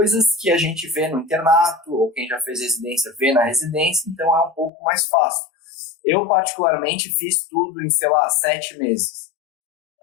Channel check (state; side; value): drops out; right; at 4.7 s